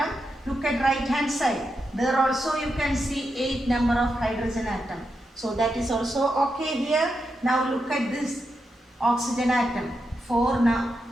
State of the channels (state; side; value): normal; both; correlation 0.86